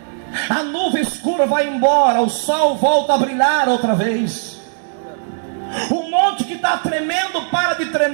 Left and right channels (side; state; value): left; silent; digital silence